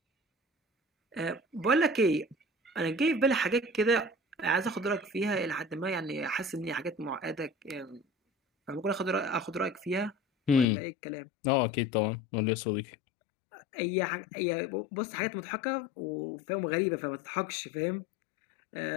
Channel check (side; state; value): right; drops out; at 10.7 s